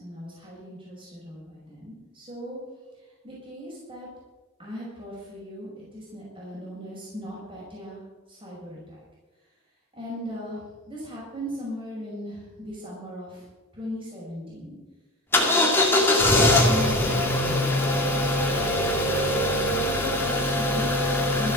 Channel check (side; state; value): both; normal; correlation 0.30